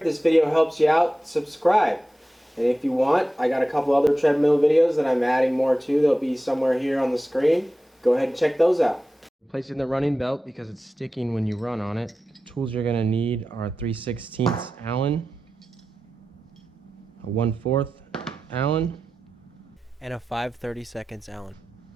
video helps you out, subscribe. And if you want, I got a couple other treadmill videos that I'm adding more to. They'll be somewhere here on the screen. Go ahead and check those out. Replacing the running belt because it's sticking when you run on it. Tools you're going to need are 3/16 Allen, a 1/4 Allen, and a 5/32 Allen.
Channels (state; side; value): normal; both; correlation 0.93